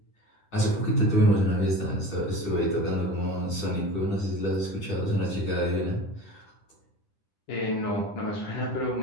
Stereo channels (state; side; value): late; right; 10 ms